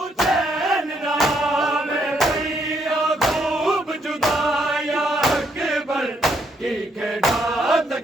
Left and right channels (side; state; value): both; normal; correlation 0.73